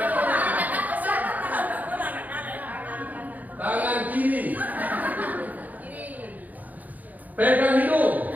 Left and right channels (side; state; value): left; late; 0.080 ms